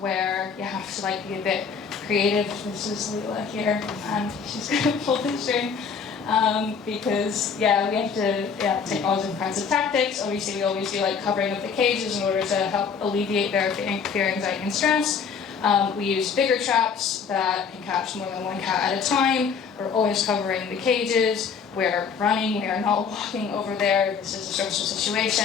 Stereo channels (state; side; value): quieter; right; 6.2 dB